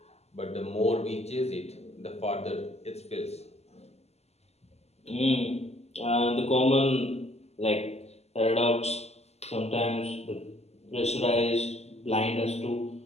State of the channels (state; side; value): late; right; 0.30 ms